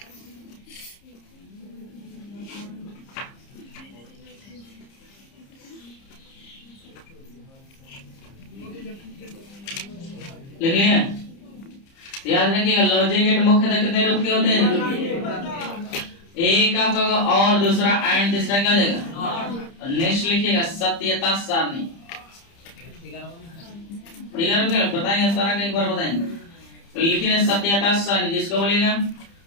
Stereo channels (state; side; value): late; right; 30 ms